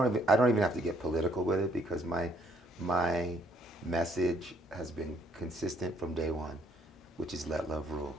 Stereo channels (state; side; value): normal; both; correlation 0.67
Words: even have to get political with it, because my message has been consistent from day one, which is let love rule.